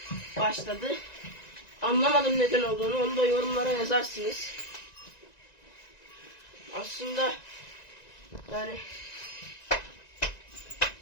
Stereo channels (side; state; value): right; late; 1.9 ms